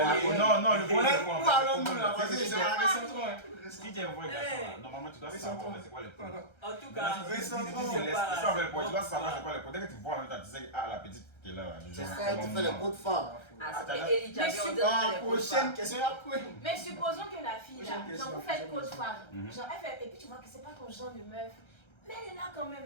Non, le point, c'est Où quoi? allons-nous là? Vas-y, c'est un récentron. Si tu es un vrai garçon, là, normalement, tu dois savoir c'est quoi les points. En tout cas, C'est ça, le point. Tu dois savoir c'est quoi les points. Dès que tu vois en même temps, tu sais, ah, la petite qui est là. C'est ça, tu fais les coups de femmes. Ah, c'était Eli Jabi, on dirait Prochaine question, après. Mais supposons que la fille là, Prochaine genre vous question. faites côte fois, Mhm. genre elle fait, et puis tu vois que c'est pas ton genre de meuf, mais elle est là quand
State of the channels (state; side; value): late; right; 1.3 ms